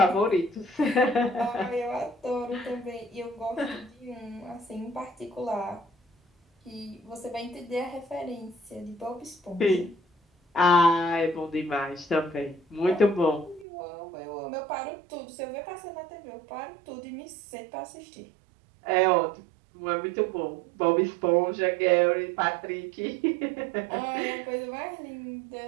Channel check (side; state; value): left; drops out; at 13.7 s